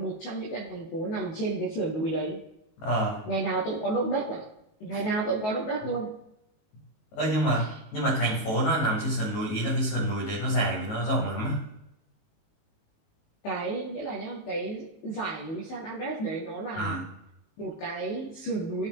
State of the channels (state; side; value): late; right; 18 ms